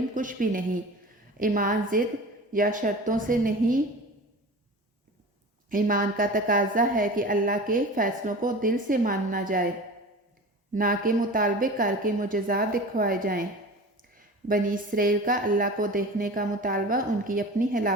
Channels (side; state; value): both; normal; correlation 0.35